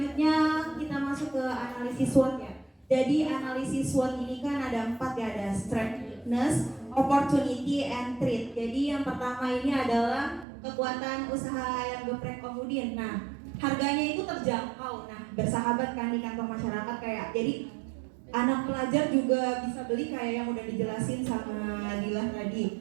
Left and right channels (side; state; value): left; drops out; at 10.5 s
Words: kita masuk ke analisis SWOT ya. Jadi analisis SWOT ini kan ada 4 ya, ada strength, weakness, opportunity, and threat. Jadi yang pertama ini adalah kekuatan usaha ayam geprek Om Udin. Nah, harganya itu terjangkau. Nah, bersahabat kan di kantong masyarakat kayak. Jadi anak pelajar juga bisa beli kayak yang udah dijelasin sama Dilah